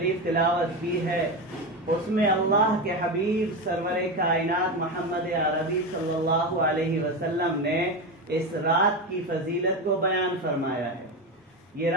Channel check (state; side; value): normal; both; correlation 0.17